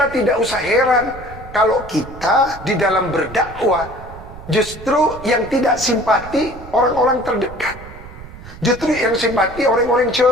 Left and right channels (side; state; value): right; noise; rumble, 15 dB below the sound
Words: tidak usah heran kalau kita di dalam berdakwah justru yang tidak simpati orang-orang terdekat. Justru yang simpati orang-orang